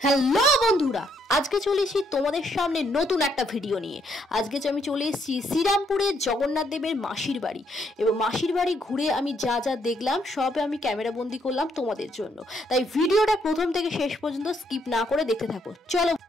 হ্যালো বন্ধুরা, আজকে চলে এসেছি তোমাদের সামনে নতুন একটা ভিডিও নিয়ে। আজকে আমি চলে এসেছি শ্রীরামপুরের জগন্নাথ দেবের মাসির বাড়ি, এবং মাসির বাড়ি ঘুরে আমি যা যা দেখলাম সব আমি ক্যামেরা বন্দি করলাম তোমাদের জন্য। তাই ভিডিওটা প্রথম থেকে শেষ পর্যন্ত স্কিপ না করে দেখতে থাকো। চলো,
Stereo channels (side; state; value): both; normal; correlation 0.72